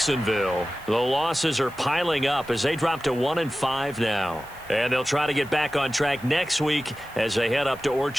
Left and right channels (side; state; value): right; noise; hiss, 23 dB below the sound